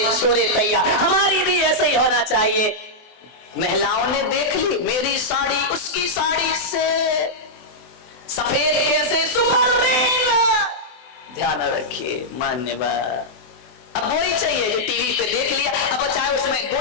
छोरे तैयार, हमारी भी ऐसे ही होना चाहिए। महिलाओं ने देख ली मेरी साड़ी उसकी साड़ी से सफेद कैसे, सुपरमैन। ध्यान रखिए मान्यवर, अब वही चाहिए जो टीवी पे देख लिया, अब चाहे उसमें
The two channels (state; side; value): late; right; 24 ms